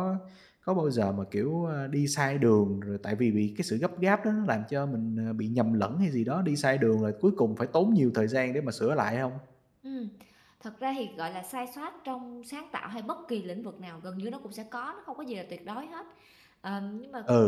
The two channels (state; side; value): identical; both; correlation 1.00